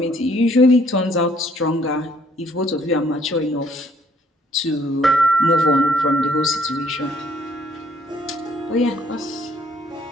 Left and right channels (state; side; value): normal; both; correlation 0.63